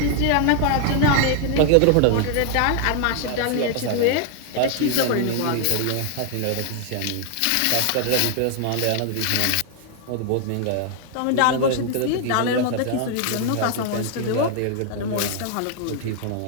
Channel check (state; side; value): different; both; correlation 0.00